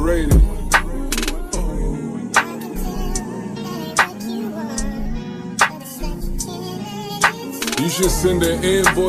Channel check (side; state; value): both; identical; correlation 1.00